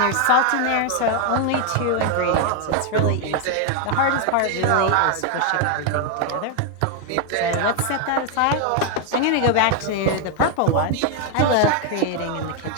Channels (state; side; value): different; both; correlation 0.00